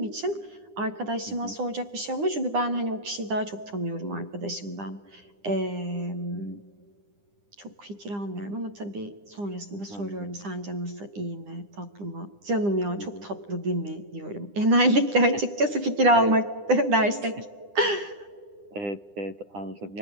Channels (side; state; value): left; late; 9.9 ms